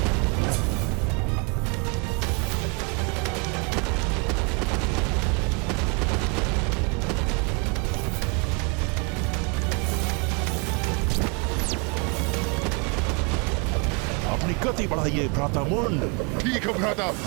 गति बढ़ाइए भ्राता मुंड। ठीक है भ्राता।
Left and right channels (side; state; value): left; quieter; 33.9 dB